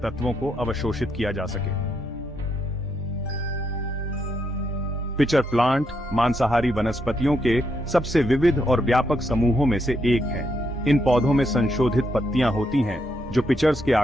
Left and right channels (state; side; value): normal; both; correlation 0.78